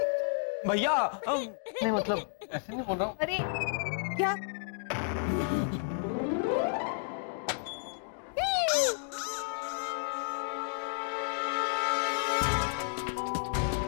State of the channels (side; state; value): right; silent; digital silence